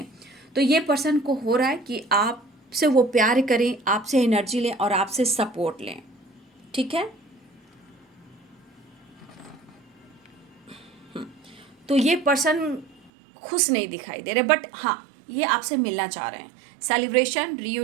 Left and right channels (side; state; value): left; drops out; at 13.1 s